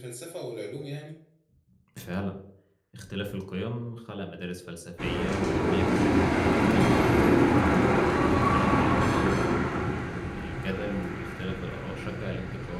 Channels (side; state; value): both; identical; correlation 1.00